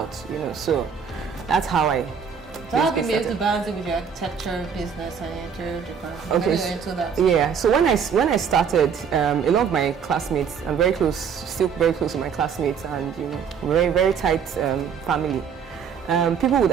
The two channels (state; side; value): quieter; left; 6.9 dB